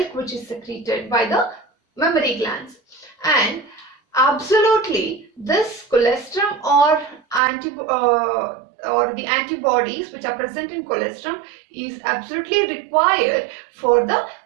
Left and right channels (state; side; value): drops out; left; at 7.4 s